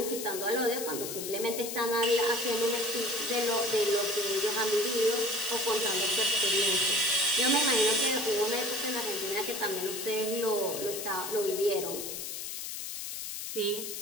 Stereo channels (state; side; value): noise; left; hiss, 6 dB below the sound